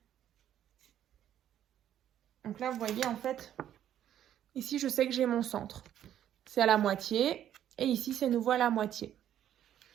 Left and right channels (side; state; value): left; quieter; 10.8 dB